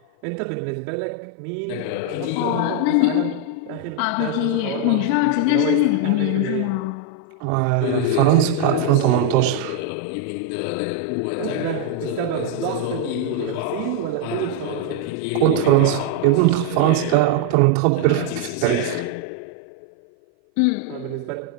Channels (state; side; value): different; both; correlation 0.00